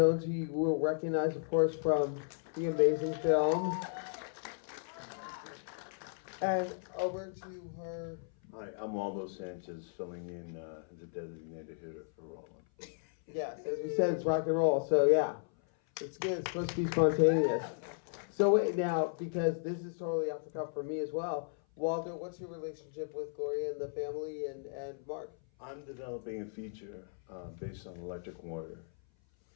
who you will recognize, of course, from the amazing film. And over to her. Hi, I'm Waldo Sanchez, filling in as a designated hitter for Bolan. Yes, as we said, it's rock and roll, so yeah. It's good, it's supposed to be spontaneous. So wait, now, because this is totally off the cuff for me as well, Waldo, what's your relationship with Gloria and the family and Marc? I'm developing a feature based on Electric Warrior.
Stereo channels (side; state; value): right; silent; 54 dB below the other